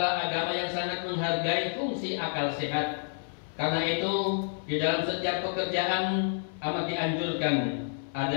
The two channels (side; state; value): right; silent; 58 dB below the other